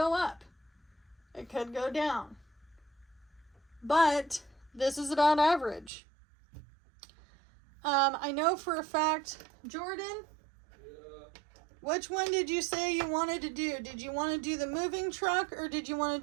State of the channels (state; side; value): drops out; left; at 5.9 s